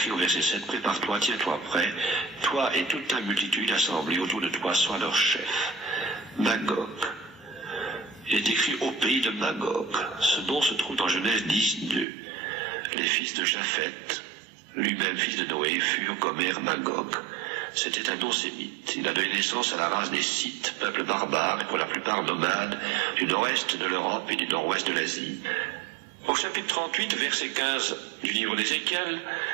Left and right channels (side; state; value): left; drops out; at 12.1 s